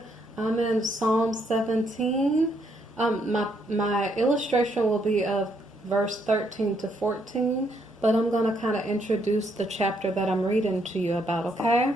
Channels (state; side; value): normal; both; correlation 0.73